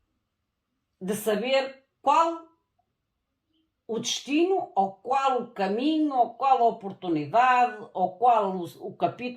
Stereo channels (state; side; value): identical; both; correlation 1.00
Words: De saber qual o destino, ou qual o caminho, ou qual a oportunidade, ou qual o